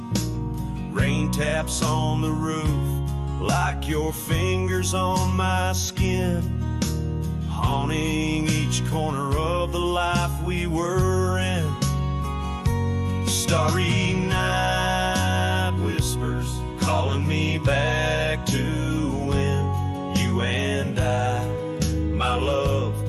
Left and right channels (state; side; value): identical; both; correlation 1.00